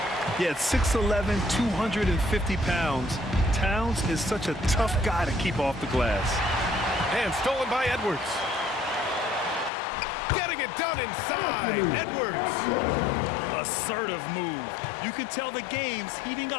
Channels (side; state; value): right; drops out; at 9.7 s